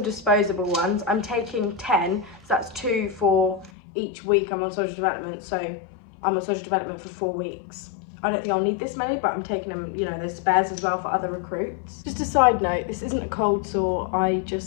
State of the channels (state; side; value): drops out; right; at 3.7 s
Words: disposable ones. I'm taking 10, so that's 2 for each week I'm on social development. So I'm on social development for 4 weeks. I don't think I'll need this many, but I'm taking them, you know, there's spares as well for other recruits. Just a side note, this isn't a cold sore, I